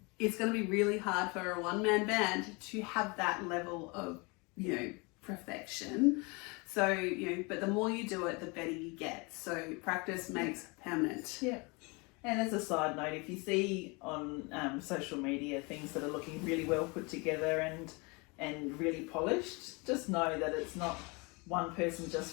it's going to be really hard for a one-man band to have that level of, perfection. So, but the more you do it, the better you get. So practice makes permanent. Yeah. And as a side note, if you see on social media things that are looking really well put together and really polished, just know that it's not one person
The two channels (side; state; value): right; quieter; 28.6 dB